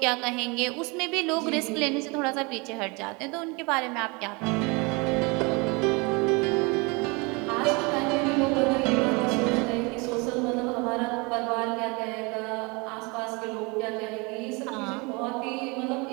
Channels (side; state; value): left; quieter; 28.4 dB